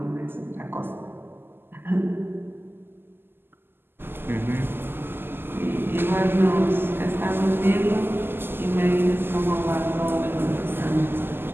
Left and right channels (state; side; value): late; left; 0.10 ms